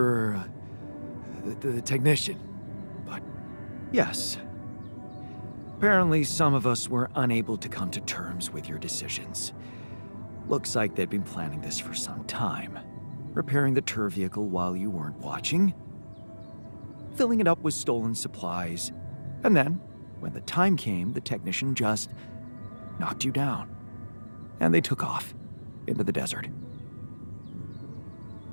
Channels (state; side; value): inverted; both; correlation -1.00